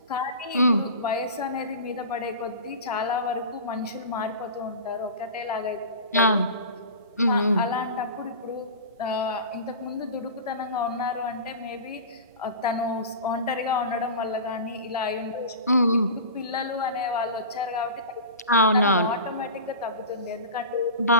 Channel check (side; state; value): both; inverted; correlation -0.32